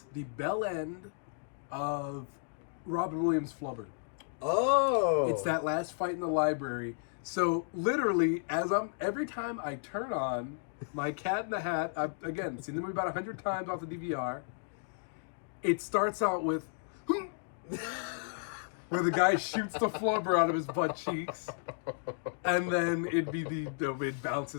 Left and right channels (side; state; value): right; silent; digital silence